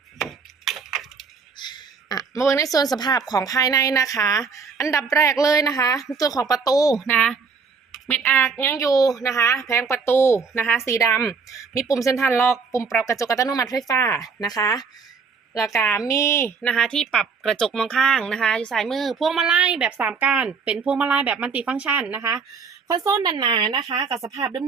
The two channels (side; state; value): left; quieter; 5.3 dB